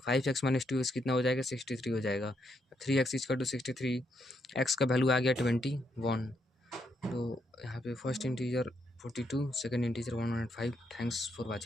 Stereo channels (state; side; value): normal; both; correlation 0.77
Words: 5x - 2x कितना हो जाएगा, 63 हो जाएगा। 3x = 63, x का वैल्यू आ गया 21। तो यहाँ पे first integer 42, second integer 105। Thanks for